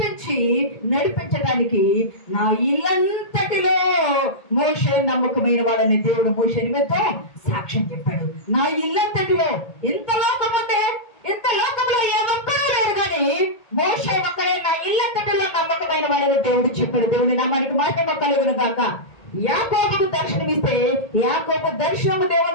నడిపించడానికి నా ఇల్లంతటిలో మోషే నమ్మకమైన వాడని దేవుడు మోషే నిమిత్తం సాక్ష్యం చెప్పాడు. నా ఇల్లంతటిలో ఎంత లోకం ఉందే, ఇంత లోకంలో ఏ ఒక్కరూ లేరు కానీ మోషే ఒక్కడే నా ఇల్లంతటిలో నమ్మకమైన వాడని దేవుడు చెప్పాడు. దేవుని నామానికి మహిమ కలుగును గాక. యాకోబుకు దర్శనమిస్తే యాకోబు దర్శనము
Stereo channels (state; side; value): late; right; 1.8 ms